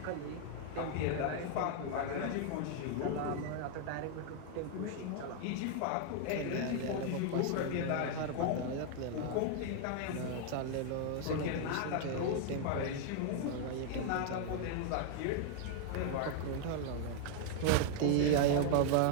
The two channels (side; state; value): both; different; correlation 0.00